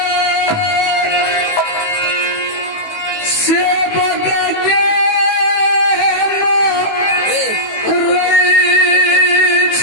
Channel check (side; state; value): right; late; 18 ms